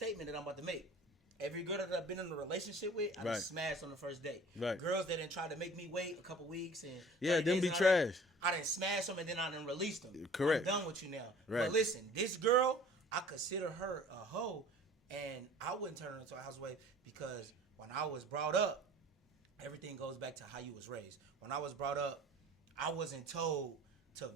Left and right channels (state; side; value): normal; both; correlation 0.47